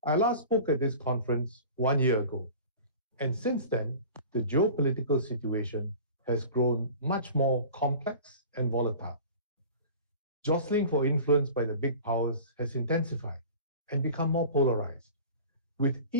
I last spoke at this conference 1 year ago, and since then, the geopolitical situation has grown much more complex and volatile. Jostling for influence by the big powers has intensified and become more polarized, with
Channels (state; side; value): inverted; both; correlation -0.40